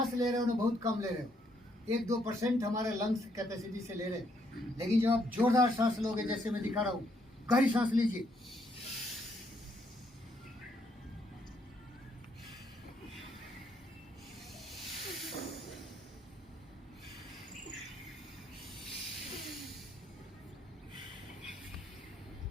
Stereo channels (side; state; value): both; normal; correlation 0.72